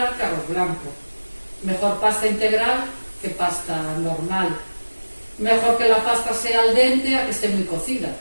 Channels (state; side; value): inverted; both; correlation -1.00